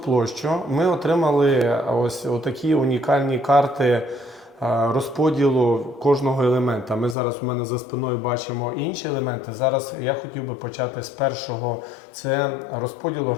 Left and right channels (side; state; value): right; drops out; at 7.2 s